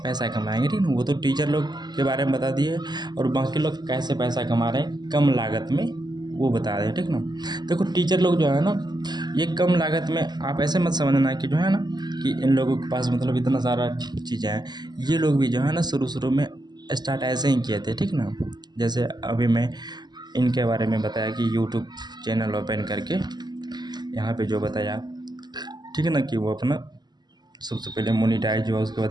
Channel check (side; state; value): left; late; 0.20 ms